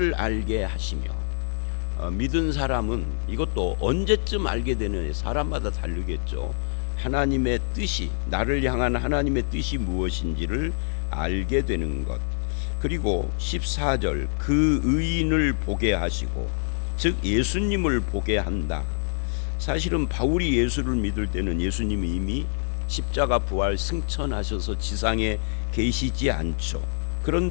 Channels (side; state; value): right; silent; 57 dB below the other